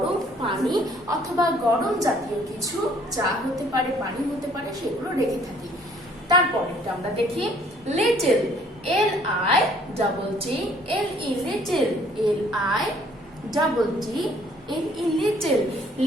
পানি অথবা গরম জাতীয় কিছু, চা হতে পারে, পানি হতে পারে, সেগুলো রেখে থাকি। তারপরেরটা আমরা দেখি little, L I double T L E, little, L I double T L E, little.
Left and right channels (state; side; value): normal; both; correlation 0.60